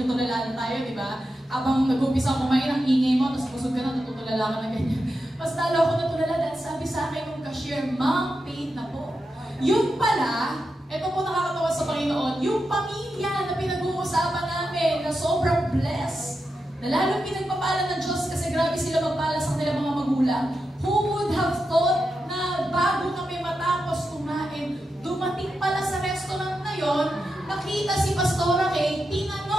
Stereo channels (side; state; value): both; normal; correlation 0.88